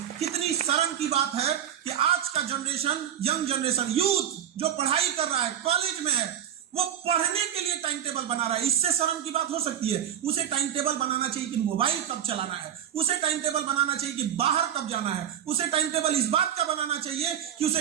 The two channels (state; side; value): quieter; left; 9.9 dB